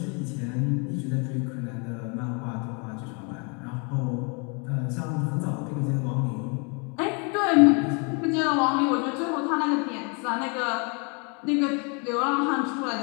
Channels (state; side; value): quieter; right; 34.5 dB